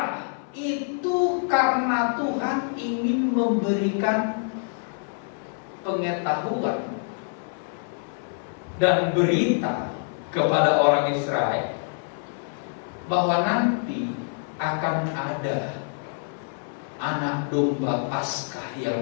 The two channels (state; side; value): silent; right; 61 dB below the other